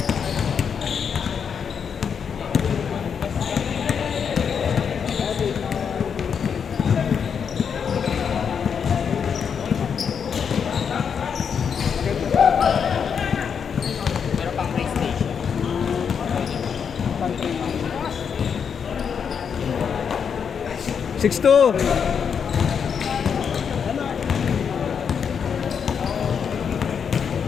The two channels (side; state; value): right; quieter; 7.0 dB